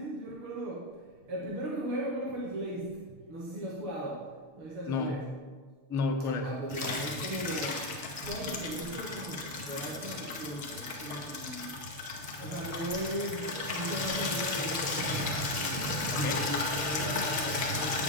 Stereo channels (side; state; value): left; late; 6.7 ms